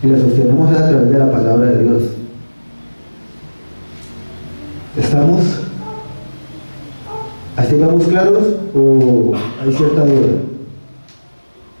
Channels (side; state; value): both; inverted; correlation -1.00